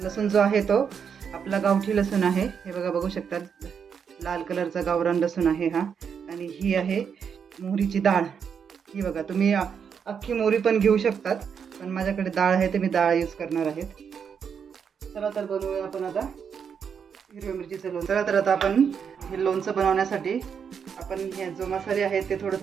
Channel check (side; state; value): left; quieter; 7.0 dB